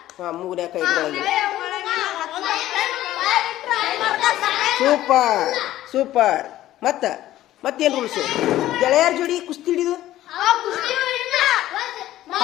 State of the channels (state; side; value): quieter; right; 14.2 dB